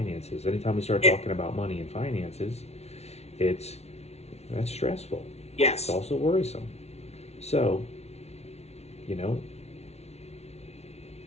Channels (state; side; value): late; right; 0.31 ms